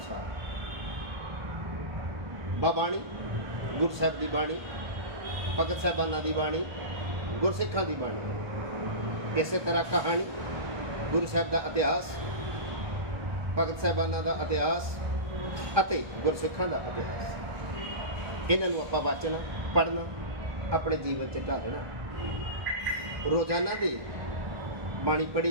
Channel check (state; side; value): late; left; 1.2 ms